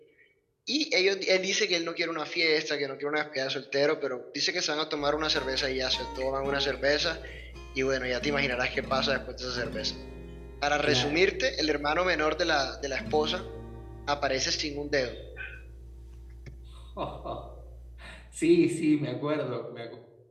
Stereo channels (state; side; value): identical; both; correlation 1.00